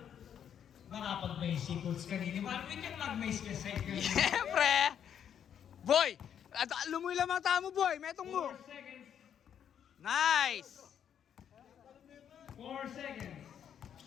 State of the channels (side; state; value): right; quieter; 8.8 dB